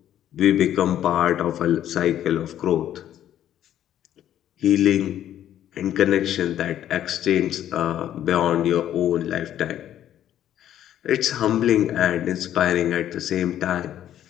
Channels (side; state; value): right; quieter; 11.2 dB